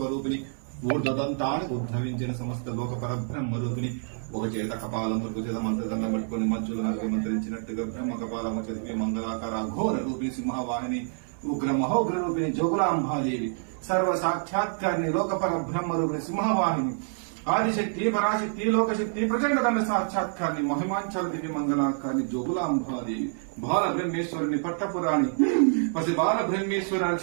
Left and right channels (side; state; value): left; silent; 60 dB below the other